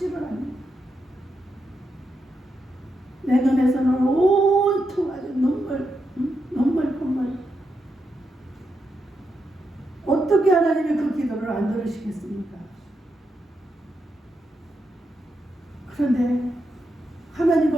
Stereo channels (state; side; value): normal; both; correlation 0.84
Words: 않는 거예요. 내 눈에서는 온통 아주 눈물 콧물. 어떻게 하나님이 그 기도를 안 들으시겠습니까? 그런데